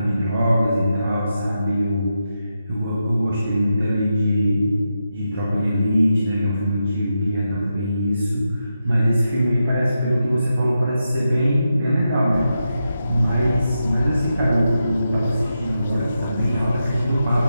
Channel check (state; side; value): inverted; both; correlation -0.87